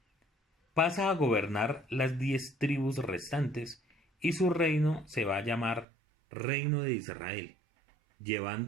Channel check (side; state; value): left; drops out; at 5.9 s